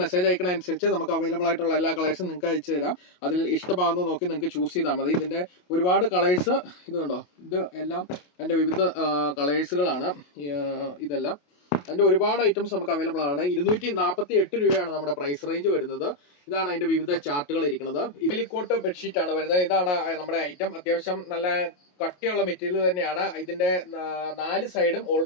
അയക്കണ അനുസരിച്ച് നമുക്ക് അവൈലബിൾ ആയിട്ടുള്ള എല്ലാ കളേഴ്സും നിങ്ങൾക്ക് അയച്ചു തരാം. അതിൽ ഇഷ്ടമാകുന്നത് നോക്കി നിങ്ങൾക്ക് ചൂസ് ചെയ്താൽ മതി. ഇതിന്റെ ഒരുപാട് കളേഴ്സ് ഇതുണ്ടോ, ഇത് എല്ലാം അതിന്റെ വിവിധ കളേഴ്സുകളാണ്. ഇതെല്ലാം അതിന്റെ ഒരുപാട് ഐറ്റംസ് നമുക്ക് അവൈലബിൾ ആണ്. 248 രൂപയാണ് നമ്മുടെ പ്രൈസ് റേഞ്ച് വരുന്നത്. ഇതാണ് അതിന്റെ വിവിധ ചാർട്ടുകൾ ഇരിക്കുന്നത്. ഇലിക്കോട്ട് ബെഡ്ഷീറ്റ് ആണ് വരുന്നത്. ഇതാണ് നമ്മുടെ ഐറ്റം. അത്യാവശ്യം നല്ല കട്ടിയുള്ള മെറ്റീരിയൽ തന്നെയാണ്. ഇതിന്റെ 4 സൈഡും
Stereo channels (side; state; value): right; late; 28 ms